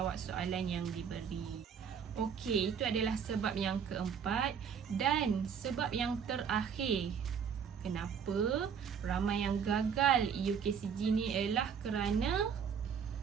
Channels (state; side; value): quieter; left; 7.2 dB